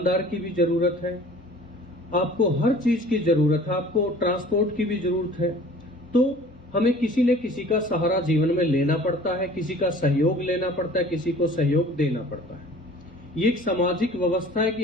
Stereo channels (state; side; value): normal; both; correlation 0.47